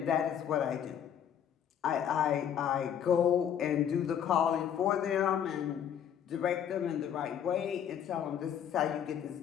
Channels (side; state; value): right; quieter; 9.0 dB